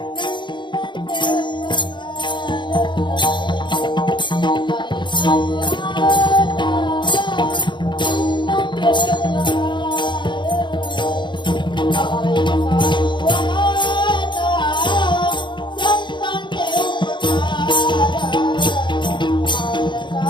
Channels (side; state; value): right; late; 0.23 ms